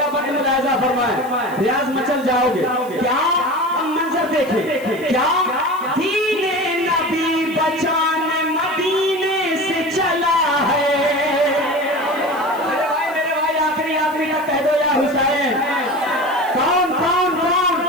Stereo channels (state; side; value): noise; left; hiss, 22 dB below the sound